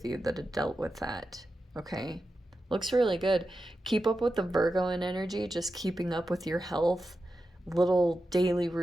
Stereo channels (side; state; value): both; normal; correlation 0.91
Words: you that have dealt with that. Okay, looks really good. Keep up with the Virgo in energy, just keeping up with your health. Little daily